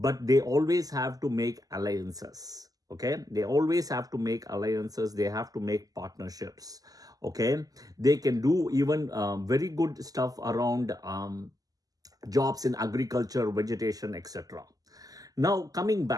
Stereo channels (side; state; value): left; late; 0.17 ms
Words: they always have to make alliances. Okay. They always have to make alliances. They have to make partnerships. Okay. They can do even very good stuff around jobs in agriculture, vegetation, etc. Now, coming